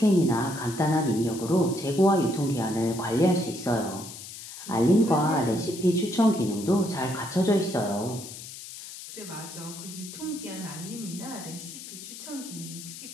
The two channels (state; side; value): noise; left; hiss, 12 dB below the sound